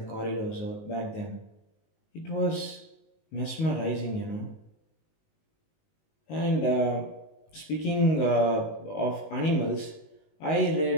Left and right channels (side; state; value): right; late; 19 ms